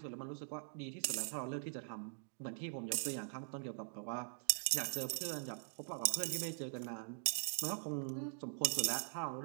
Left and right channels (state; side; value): silent; left; digital silence